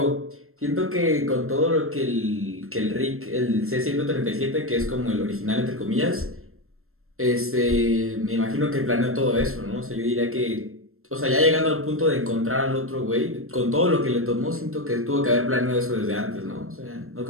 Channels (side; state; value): left; late; 0.62 ms